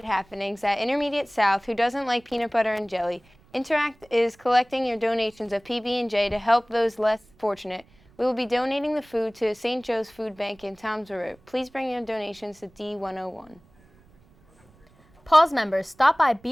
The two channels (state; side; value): noise; right; rumble, 30 dB below the sound